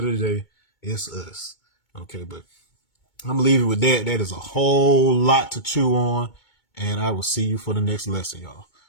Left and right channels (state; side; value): late; right; 2.2 ms